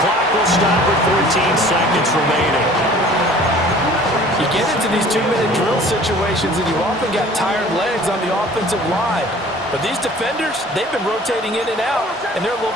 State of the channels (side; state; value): both; normal; correlation 0.49